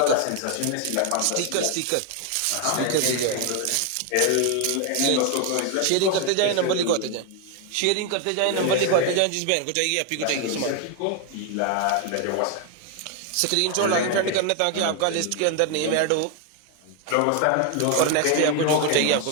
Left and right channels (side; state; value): both; different; correlation 0.01